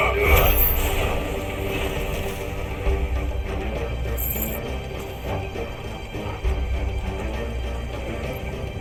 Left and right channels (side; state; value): both; identical; correlation 1.00